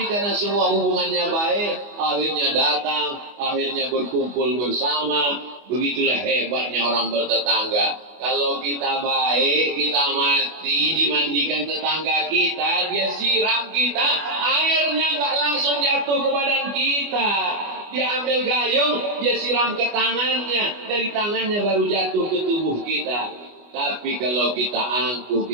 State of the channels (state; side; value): late; left; 24 ms